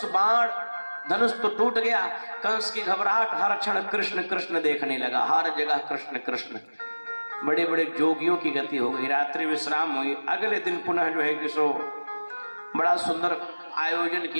धनुष तो टूट गया। कंस की घबराहट, हर क्षण कृष्ण कृष्ण देखने लगा, हर जगह कृष्ण कृष्ण। बड़े बड़े जोगियों की गति हो गई, रात्रि विश्राम हुई। अगले दिन पुनः जो है कि सो बड़ा सुंदर आयोजन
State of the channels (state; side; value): inverted; both; correlation -1.00